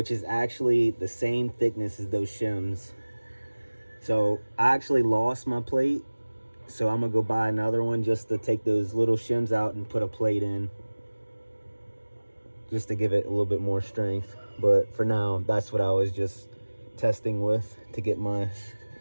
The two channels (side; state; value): both; inverted; correlation -1.00